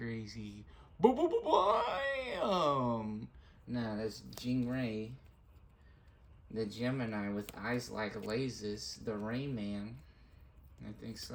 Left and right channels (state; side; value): identical; both; correlation 1.00